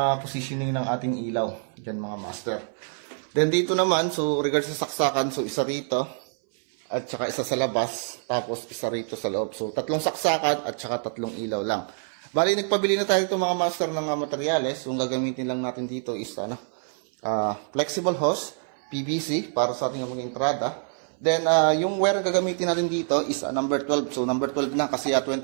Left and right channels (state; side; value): silent; left; 59 dB below the other